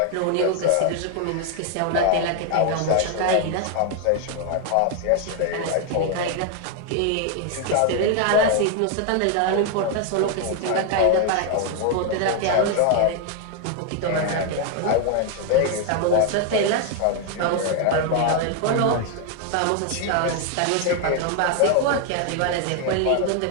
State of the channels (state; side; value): different; both; correlation 0.00